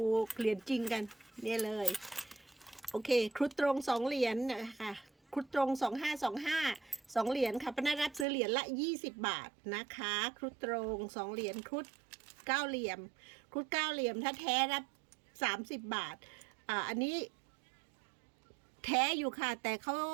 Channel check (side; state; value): left; drops out; at 8.2 s